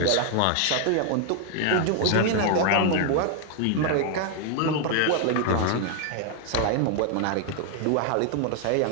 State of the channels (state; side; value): different; both; correlation 0.00